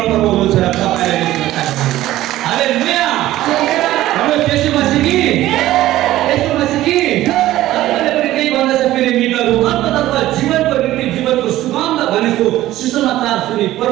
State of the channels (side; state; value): left; quieter; 15.0 dB